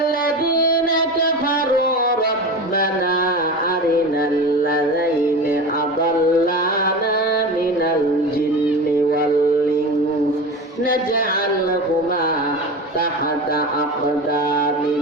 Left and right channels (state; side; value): normal; both; correlation 0.28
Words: كفروا ربنا أرنا الذين أضلانا من الجن والإنس نجعلهما تحت